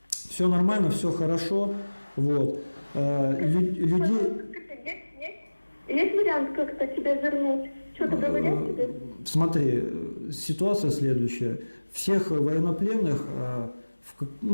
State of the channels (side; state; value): both; inverted; correlation -1.00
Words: все нормально, все хорошо. Вот. Людей... Есть вариант как-то тебя вернуть? Что-то говорят тебе? Смотри, ситуация следующая. Всех военнопленных